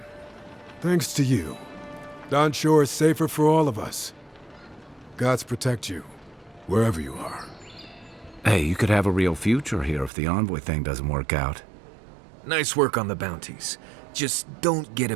Thanks to you, Don Shore is safer for all of us. Gods protect you, wherever you are. Hey, you could have a real future here if the Envoy thing doesn't work out. Nice work on the bounties. Just don't get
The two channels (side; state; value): left; drops out; at 10.1 s